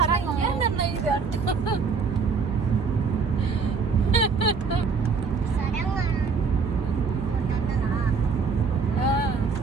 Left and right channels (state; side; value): quieter; left; 5.1 dB